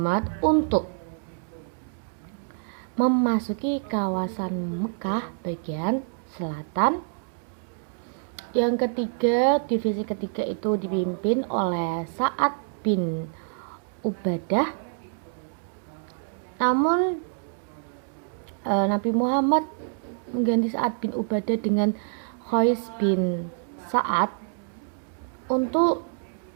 untuk memasuki kawasan Mekah bagian selatan. Yang ketiga, divisi ketiga itu dipimpin oleh Sa'ad bin Ubadah. Namun Nabi Muhammad mengganti Sa'ad bin Ubadah dengan Qais bin Sa'ad untuk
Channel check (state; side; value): silent; left; digital silence